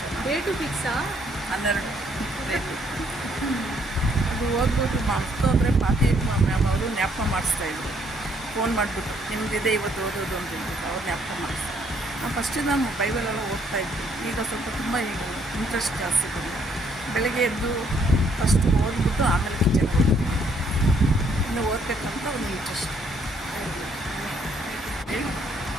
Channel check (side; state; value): both; normal; correlation 0.67